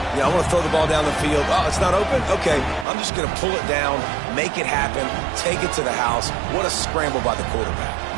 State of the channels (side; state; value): left; drops out; at 2.9 s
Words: want to throw the ball down the field. Oh, it's not open? Okay, I'm just going to pull it down, make it happen, take it to the house. What a scramble by the quarterback.